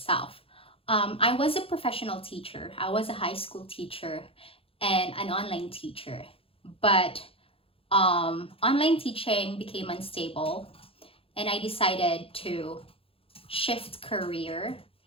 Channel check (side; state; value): right; late; 0.27 ms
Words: I was a professional teacher. I was a high school teacher and an online teacher. But online teaching became unstable and I decided to shift career